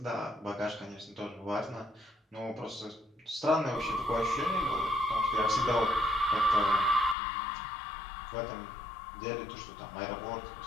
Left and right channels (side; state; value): right; drops out; at 7.2 s